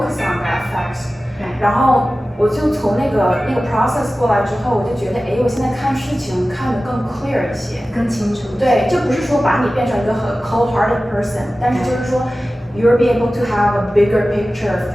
on that facts，然后我就从那个 process 过来之后，我就觉得哎，我现在看事情看得更 clear 一些，更清楚。对，就不是说把你变成一个很 cold-hearted person，但是就是说 you'll be able to have a bigger picture of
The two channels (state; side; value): normal; both; correlation 0.95